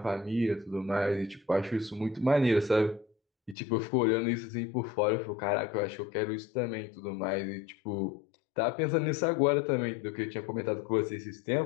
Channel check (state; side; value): drops out; right; at 3.6 s